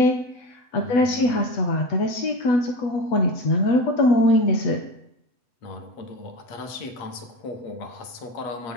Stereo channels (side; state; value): right; late; 8.1 ms